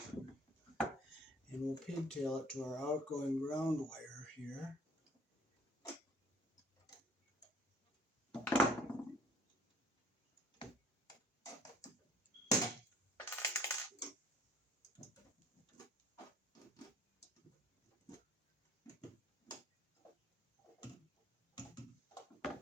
And we'll pigtail it to our outgoing ground wire here.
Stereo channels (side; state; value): both; normal; correlation 0.56